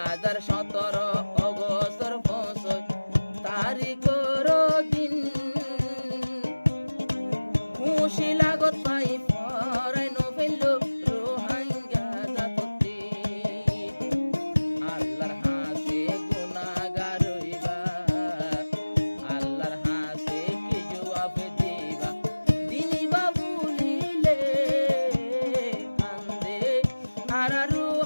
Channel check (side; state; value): both; inverted; correlation -1.00